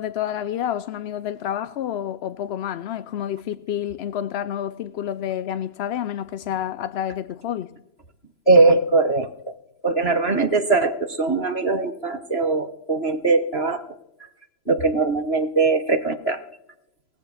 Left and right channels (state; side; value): late; right; 3.0 ms